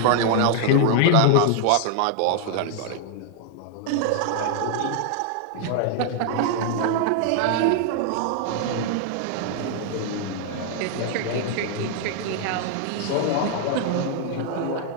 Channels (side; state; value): both; different; correlation 0.00